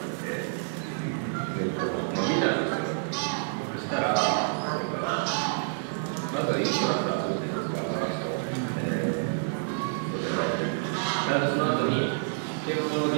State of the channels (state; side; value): silent; left; digital silence